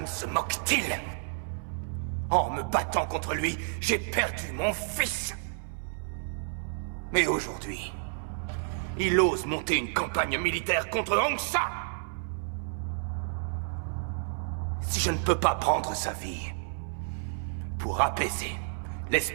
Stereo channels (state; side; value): silent; left; 58 dB below the other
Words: se moque-t-il? En me battant contre lui, j'ai perdu mon fils. Mais aujourd'hui, il ose monter une campagne militaire contre Hongsa. Si je ne peux pas prendre sa vie pour apaiser